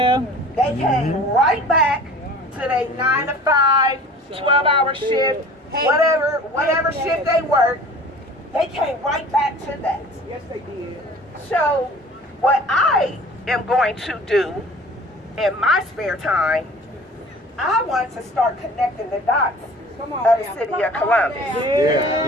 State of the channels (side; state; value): both; normal; correlation 0.45